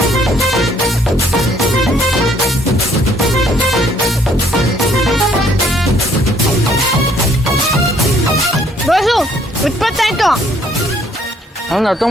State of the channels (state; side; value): normal; both; correlation 0.64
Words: ಬಾಸು 20 ಆಯ್ತು. ನಂದು